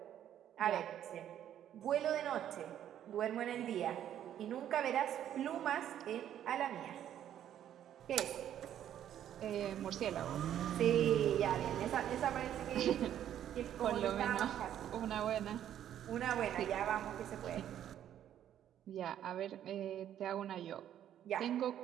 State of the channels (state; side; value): quieter; left; 10.7 dB